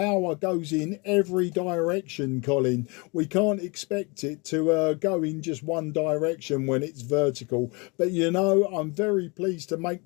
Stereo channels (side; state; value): right; quieter; 29.0 dB